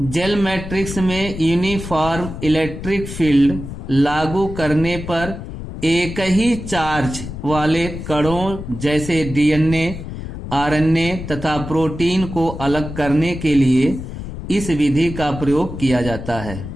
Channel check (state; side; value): noise; left; rumble, 9 dB below the sound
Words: मैट्रिक्स में यूनिफॉर्म इलेक्ट्रिक फील्ड लागू करने पर एक ही चार्ज वाले कणों जैसे डीएनए, आरएनए तथा प्रोटीन को अलग करने के लिए इस विधि का प्रयोग किया जाता है।